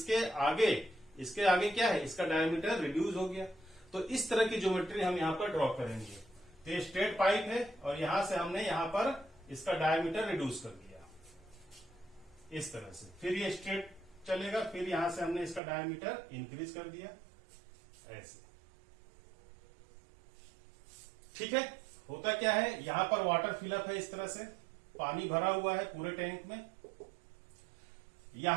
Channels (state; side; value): drops out; left; at 15.6 s